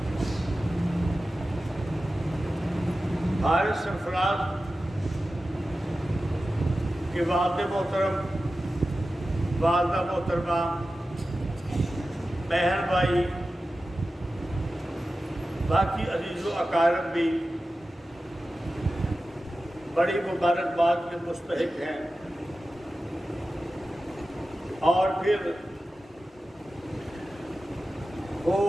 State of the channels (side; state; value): both; normal; correlation 0.94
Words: حارث سرفراز کے والد محترم، والدہ محترمہ، بہن بھائی، باقی عزیز و اقارب بھی بڑی مبارکباد کے مستحق ہیں، اور پھر وہ